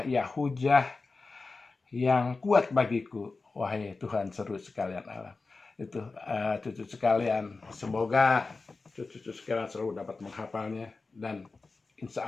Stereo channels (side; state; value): right; quieter; 3.9 dB